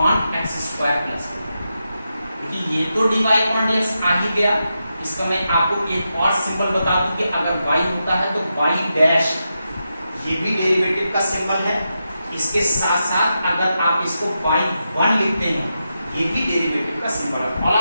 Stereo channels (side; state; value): both; inverted; correlation -0.88